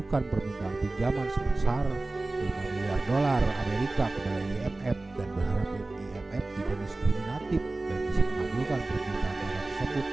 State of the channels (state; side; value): quieter; left; 3.0 dB